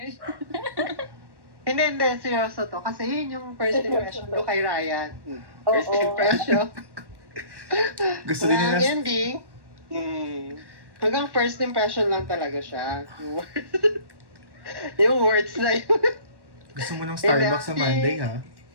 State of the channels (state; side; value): late; left; 1.1 ms